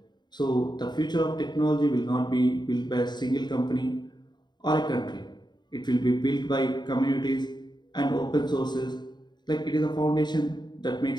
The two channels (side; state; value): right; late; 0.21 ms